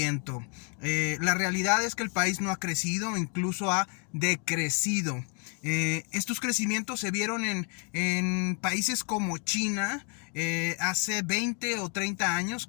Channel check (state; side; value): quieter; right; 37.9 dB